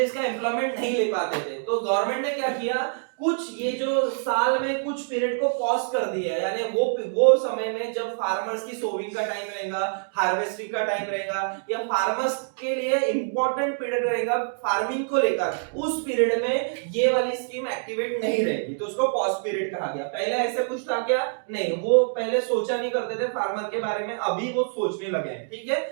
का एम्प्लॉयमेंट नहीं ले पाते थे। तो गवर्नमेंट ने क्या किया, कुछ ये जो साल में कुछ पीरियड को पॉज कर दिया, यानी वो समय में जब फार्मर्स की सोविंग का टाइम रहेगा, हार्वेस्टिंग का टाइम रहेगा, या फार्मर्स के लिए इंपॉर्टेंट पीरियड रहेगा फार्मिंग को लेकर, उस पीरियड में ये वाली स्कीम एक्टिवेट नहीं रहेगी, तो उसको पॉज पीरियड कहा गया। पहले ऐसे कुछ था क्या? नहीं, वो पहले सोचा नहीं करते थे फार्मर के बारे में, अभी वो सोचने लगे हैं। ठीक है,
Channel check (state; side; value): silent; left; digital silence